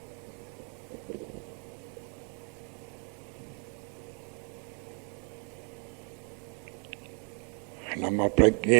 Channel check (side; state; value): left; quieter; 39.4 dB